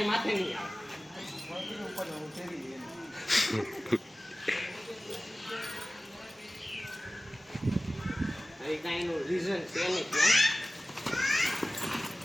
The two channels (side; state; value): both; normal; correlation 0.97